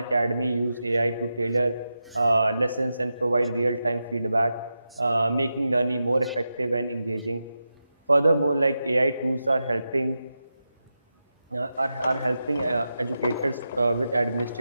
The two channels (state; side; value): inverted; both; correlation -0.90